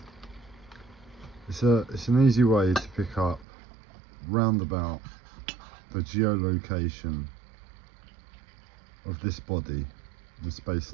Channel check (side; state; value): left; drops out; at 3.5 s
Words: It's an easy way to pick up roundabout the geolocation of this body in space